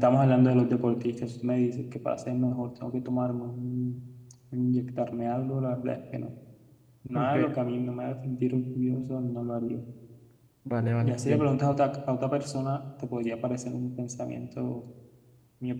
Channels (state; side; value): identical; both; correlation 1.00